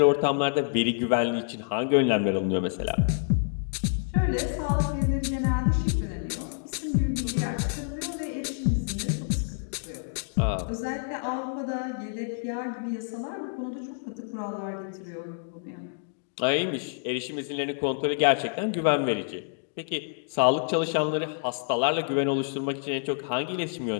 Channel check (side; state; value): right; silent; digital silence